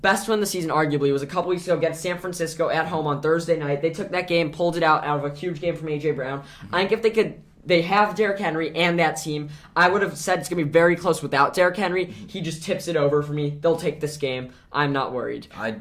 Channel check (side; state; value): both; identical; correlation 1.00